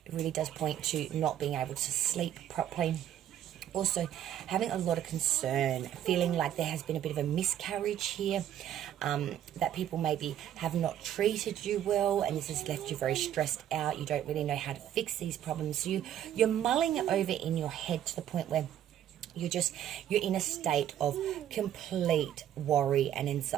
It really does point to not being able to sleep properly. Also, having a lot of concern, feeling like there has been a bit of a miscarriage here, that people maybe have not treated you well, and this has left you very stressed out. You don't really know how to fix these problems. So you're mulling it over in your head to the point where you're in a state of complete worry and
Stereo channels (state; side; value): quieter; left; 10.8 dB